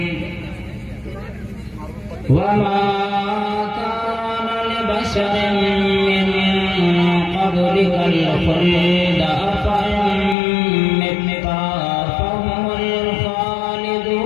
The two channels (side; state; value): right; drops out; at 10.4 s